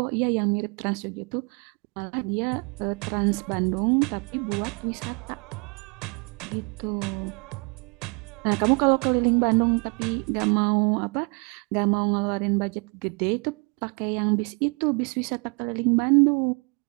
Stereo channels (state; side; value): quieter; left; 33.2 dB